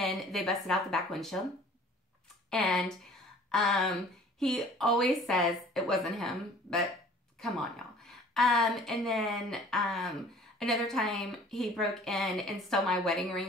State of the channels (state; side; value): normal; both; correlation 0.50